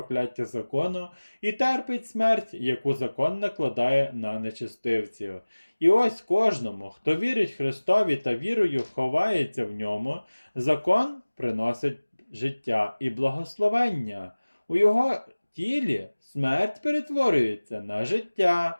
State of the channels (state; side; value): inverted; both; correlation -1.00